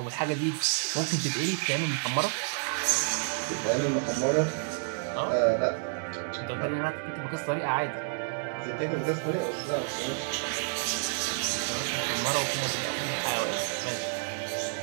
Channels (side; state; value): left; silent; digital silence